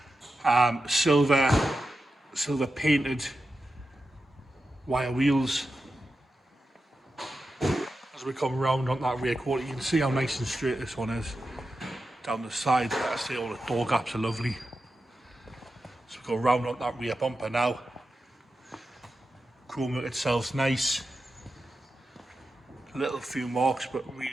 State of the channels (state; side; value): normal; both; correlation 0.91